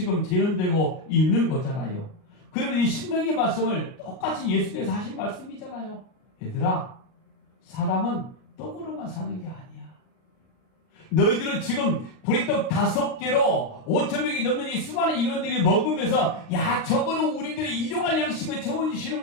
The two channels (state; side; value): late; right; 38 ms